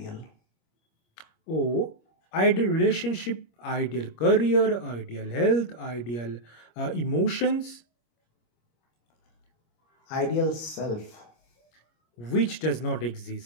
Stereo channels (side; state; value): right; late; 25 ms